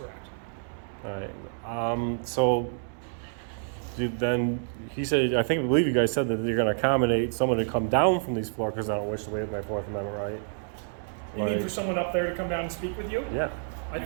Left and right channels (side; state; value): left; silent; 59 dB below the other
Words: All right. Then he said, I believe you guys said that you're going to accommodate someone to come down from these floors because I don't wish to waive my Fourth Amendment right. You need for someone up there to come down and speak with you? Yeah. I